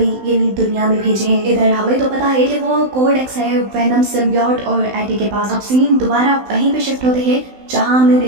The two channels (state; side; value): late; left; 16 ms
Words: यानी दुनिया में भेजे हैं। इधर हमें तो पता है कि वो कोड एक्स है वेनम सिम्बियोट और एडी के पास। अब सीन दोबारा वहीं पे शिफ्ट होते हैं जहाँ हमने